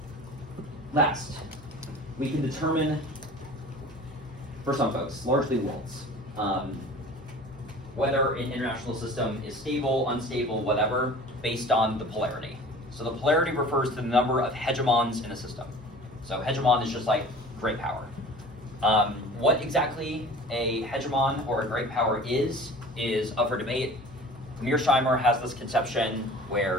Last, we can determine, for some folks, largely worlds, whether an international system is stable, unstable, whatever, based on the polarity. So the polarity refers to the number of hegemons in a system. So hegemon is just like great power. What exactly a hegemon or a great power is up for debate. Mearsheimer has this conception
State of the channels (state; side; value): normal; both; correlation 0.42